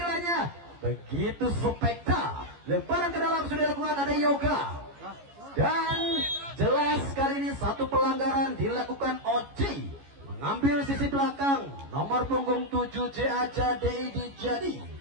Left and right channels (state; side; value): late; left; 14 ms